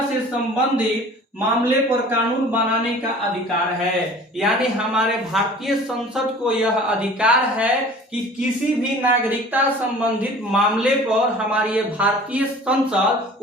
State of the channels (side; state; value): both; normal; correlation 0.45